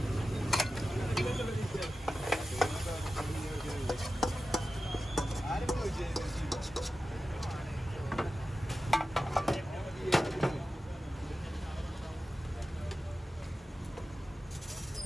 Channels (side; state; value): both; normal; correlation 0.93